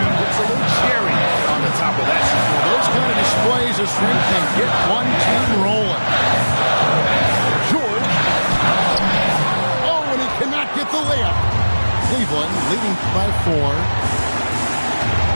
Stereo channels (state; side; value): inverted; both; correlation -1.00